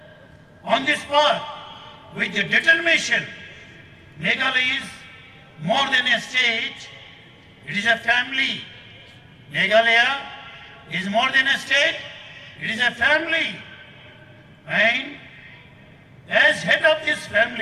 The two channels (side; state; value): both; identical; correlation 1.00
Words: on this path with determination. Meghalaya is more than a state, it is a family. Meghalaya is more than a state, it is a family. And as head of this